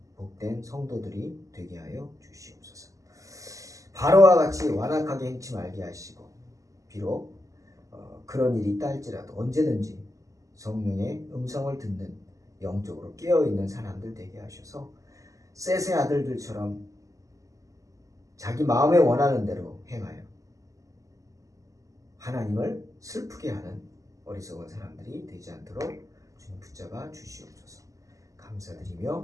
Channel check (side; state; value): left; late; 0.16 ms